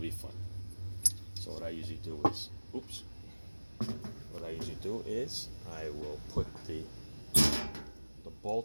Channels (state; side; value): inverted; both; correlation -1.00